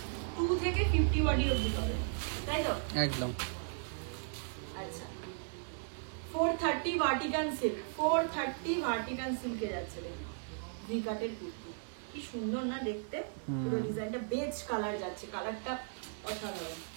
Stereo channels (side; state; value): left; silent; digital silence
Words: থেকে 50 বডি অবধি হবে, তাই তো? একদম। আচ্ছা, 430 ভার্টিকান সিল্ক, 430 ভার্টিকান সিল্কে যাচ্ছে। দেখুন, ভিকাটের কুর্তি, কি সুন্দর না দেখতে, পুরো ডিজাইনটা বেজ কালার যাচ্ছে, কালারটা অসাধারণ।